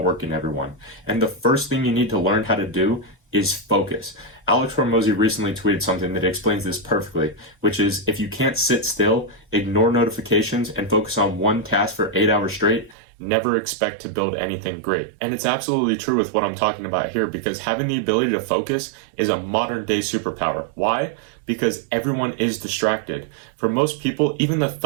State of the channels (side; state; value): left; drops out; at 13.0 s